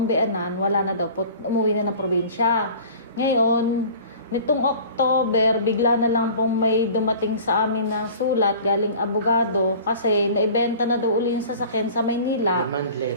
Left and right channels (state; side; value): inverted; both; correlation -0.43